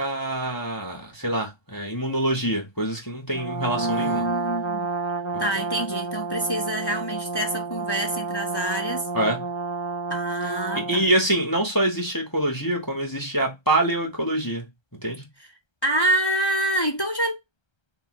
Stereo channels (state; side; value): late; right; 1.1 ms